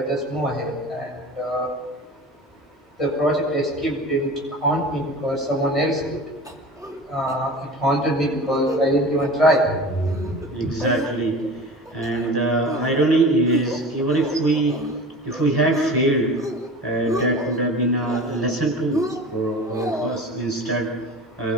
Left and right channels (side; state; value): both; normal; correlation 0.36